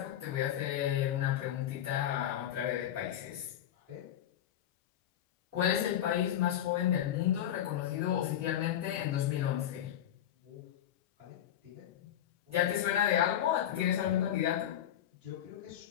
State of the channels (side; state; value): right; quieter; 11.0 dB